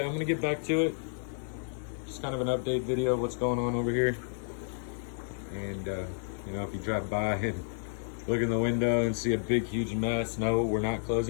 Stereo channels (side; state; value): right; silent; digital silence